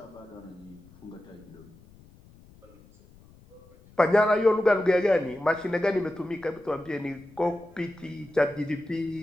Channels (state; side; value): noise; left; rumble, 25 dB below the sound